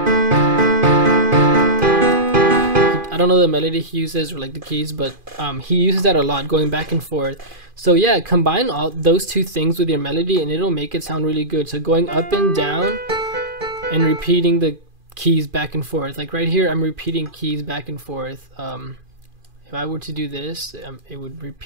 I don't know the melody he uses or like the keys, but he uses that a lot, going back and forth. So yeah, combine all those two things with your melody and it'll make it sound really good. So going up and down and repeating the keys back and forth. Like right here, I'm repeating keys back and forth. If I were to do this, it would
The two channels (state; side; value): late; left; 2.4 ms